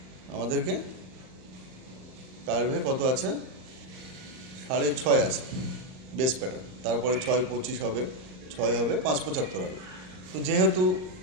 আমাদেরকে কার্ভে কত আছে, 6.5 আছে বেস প্যাটার্ন, তারপরে 6.25 হবে, 6 হবে, 5.75 হবে। তো যেহেতু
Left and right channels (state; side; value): late; left; 38 ms